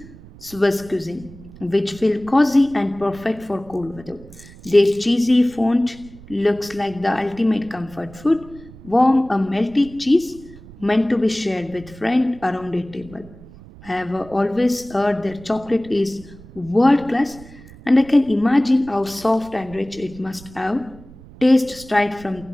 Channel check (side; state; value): right; noise; rumble, 20 dB below the sound